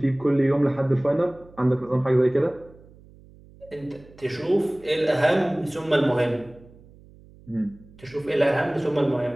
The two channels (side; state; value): right; noise; hum, 24 dB below the sound